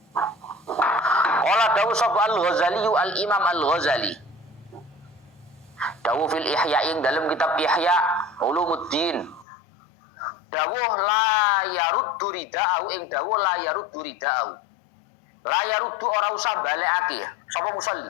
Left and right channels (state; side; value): drops out; right; at 9.5 s